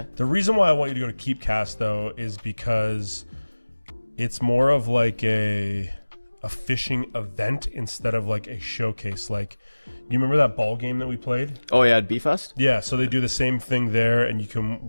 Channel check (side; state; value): both; inverted; correlation -1.00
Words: The reason why I want you to go to Keepcast, though, is because it's more of like a fishing event instead of like a showcase. Like, you remember that ball game that we played? Oh yeah, at B-Fest? Yeah, so they do the same thing there, and you